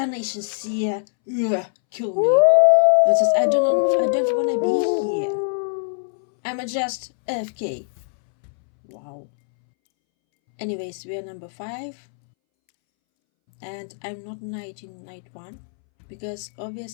seer, kill me. It says I don't wanna be here. I'm just AFK. Wow. Anyways, we are number 5. And I'm not knight in night 1. Because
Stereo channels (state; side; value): silent; right; 64 dB below the other